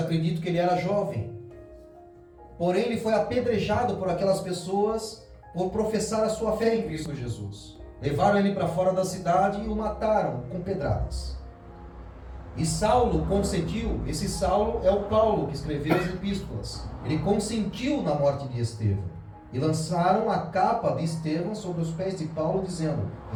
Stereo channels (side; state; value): both; identical; correlation 1.00